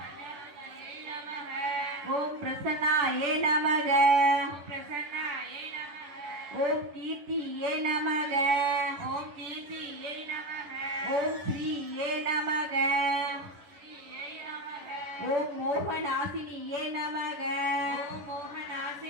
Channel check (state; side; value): late; left; 11 ms